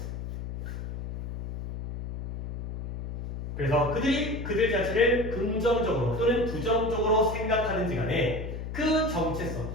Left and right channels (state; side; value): noise; left; hum, 6 dB below the sound